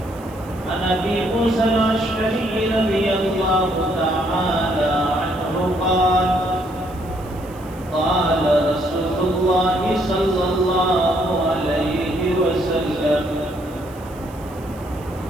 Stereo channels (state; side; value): noise; right; hiss, 25 dB below the sound